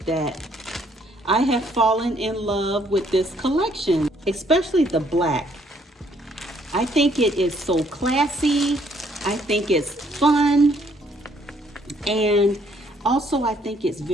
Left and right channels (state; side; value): normal; both; correlation 0.66